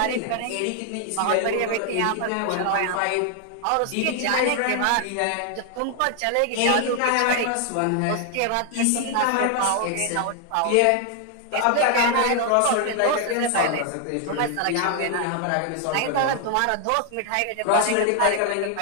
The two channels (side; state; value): both; different; correlation 0.00